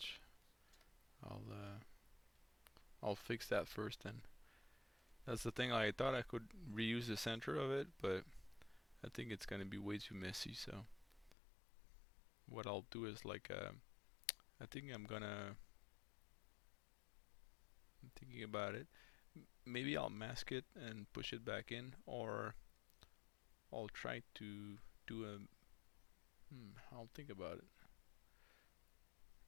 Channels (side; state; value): right; drops out; at 11.4 s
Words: I'll uh, I'll fix that first. Then that's the thing. I thought I could reuse the center of it, but I think it's gonna be way too messy. So what I'll do is like I think I'm thinking about it. Maybe I'll mask it and push it back in, or I'll try to do a. I'll think about it.